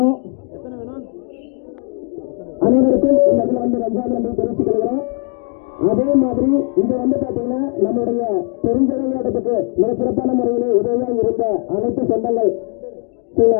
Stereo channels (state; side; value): quieter; right; 35.8 dB